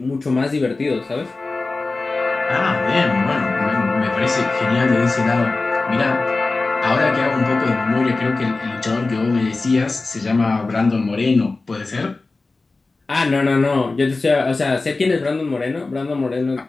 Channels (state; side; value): quieter; right; 3.5 dB